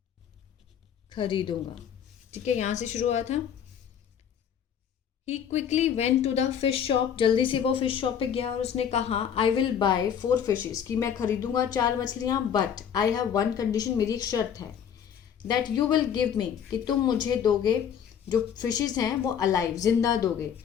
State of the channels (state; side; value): quieter; right; 8.4 dB